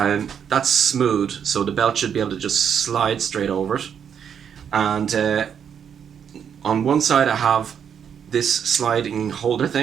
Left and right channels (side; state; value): left; quieter; 7.9 dB